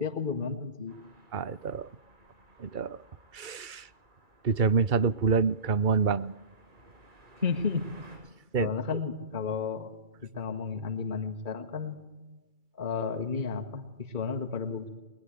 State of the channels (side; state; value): left; late; 2.3 ms